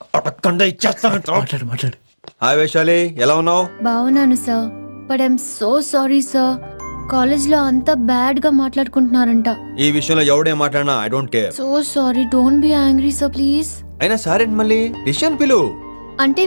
మాట్లాడు. హాయ్ వైశాలి, ఎలా ఉన్నావు? బాగున్నాను sir, but I'm so sorry sir. కాలేజ్లో అంతా బ్యాడ్ గా మాట్లాడుకుంటున్నారంట. ఈ విషయంలో ఎవడేం మాట్లాడినా I don't care. So sorry, don't be angry sir please. అయినా సారేంటి మళ్ళీ? డిసిషన్ పిలు. అంటే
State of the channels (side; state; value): both; inverted; correlation -1.00